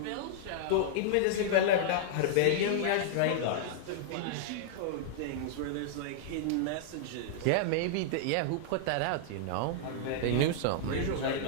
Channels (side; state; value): both; different; correlation -0.01